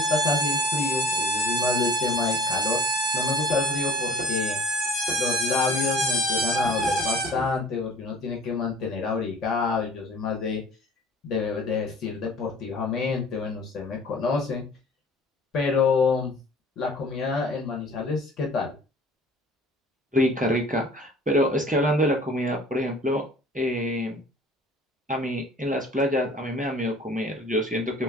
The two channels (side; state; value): both; normal; correlation 0.47